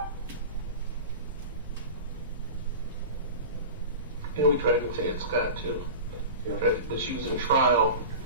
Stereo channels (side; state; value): both; inverted; correlation -0.32